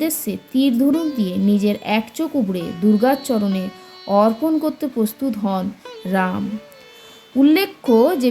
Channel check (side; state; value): both; identical; correlation 1.00